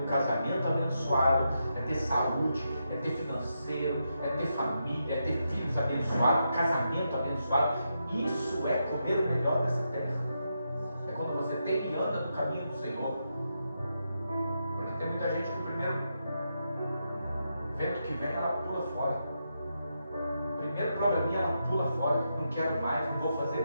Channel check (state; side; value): inverted; both; correlation -0.84